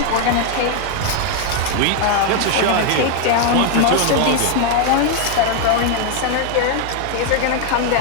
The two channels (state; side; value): different; both; correlation 0.00